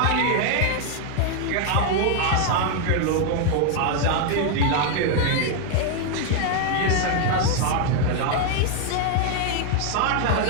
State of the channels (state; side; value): different; both; correlation 0.00